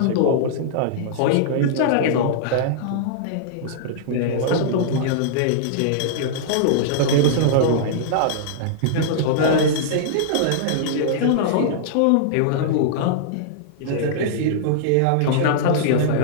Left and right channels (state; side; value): different; both; correlation -0.02